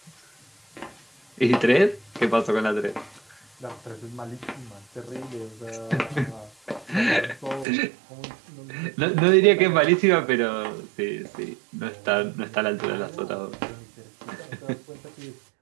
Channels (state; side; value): drops out; left; at 7.7 s